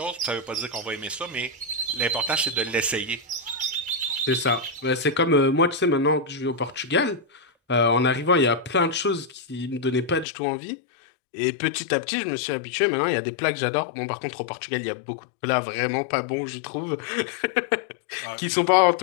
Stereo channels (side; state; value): right; drops out; at 10.2 s